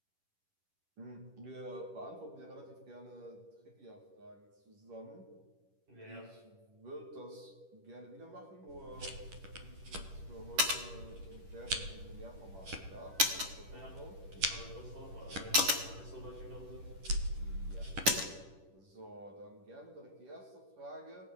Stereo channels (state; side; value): late; left; 10 ms